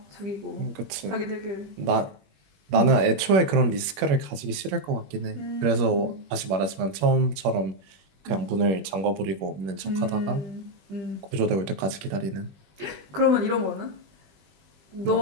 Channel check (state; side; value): late; left; 21 ms